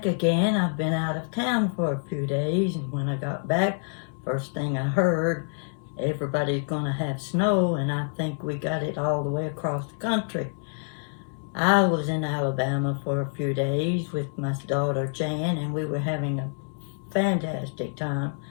again. I've been out of town for a few days, and when I got back, first thing I heard, everybody's going to have snow, and I think we got it all the way across the country. I was in Alabama for a few days with my daughter Jan, and we were having a fantastic time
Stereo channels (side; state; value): right; silent; 60 dB below the other